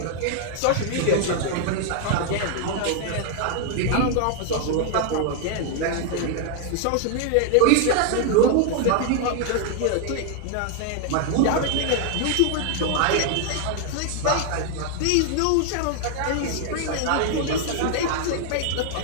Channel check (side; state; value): both; different; correlation 0.00